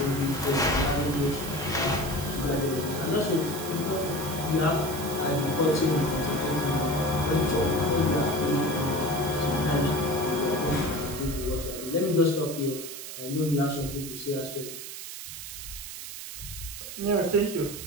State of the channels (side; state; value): right; noise; hiss, 9 dB below the sound